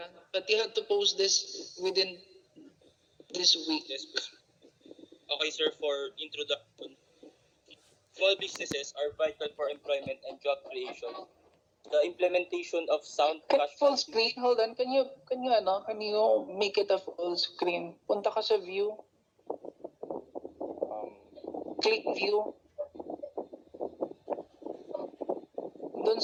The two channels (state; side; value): identical; both; correlation 1.00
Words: but you have to post this within this week. Yes, please. Okay, sir, for introduction. Small businesses are vital for employment and job creation. The implementation of sound Can cash full screen? Hold on. Can you make it a full screen? Punta ka sa view. Click view. Doon